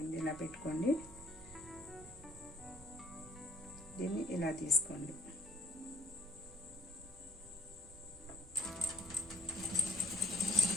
ఇలా పెట్టుకోండి, దీన్ని ఇలా తీసుకోండి.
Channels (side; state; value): both; normal; correlation 0.55